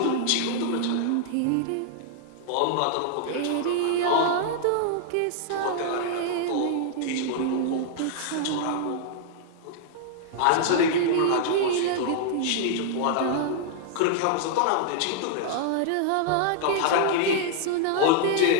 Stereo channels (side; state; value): both; different; correlation -0.01